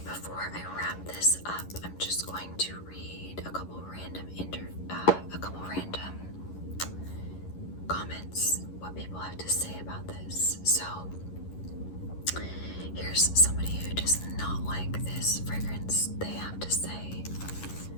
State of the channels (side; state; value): right; late; 11 ms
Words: before I wrap this up, I'm just going to read a couple random comments, what people have to say about this. So here's somebody who does not like this fragrance. They have to say,